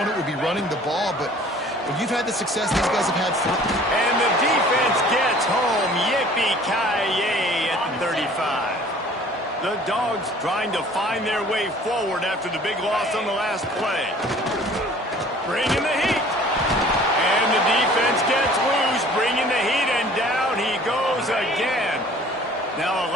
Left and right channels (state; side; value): normal; both; correlation 0.51